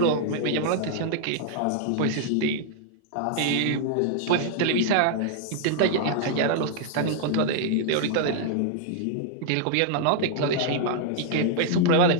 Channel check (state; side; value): different; both; correlation -0.01